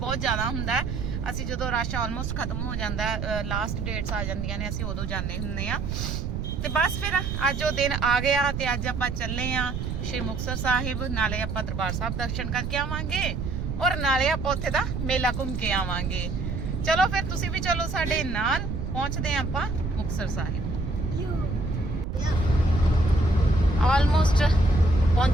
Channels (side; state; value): right; noise; rumble, 3 dB below the sound